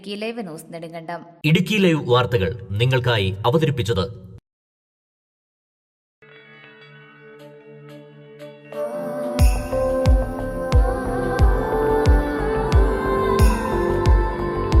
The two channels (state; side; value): identical; both; correlation 1.00